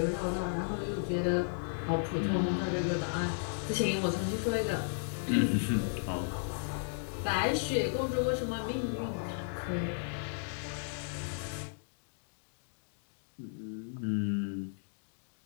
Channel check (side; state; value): right; silent; digital silence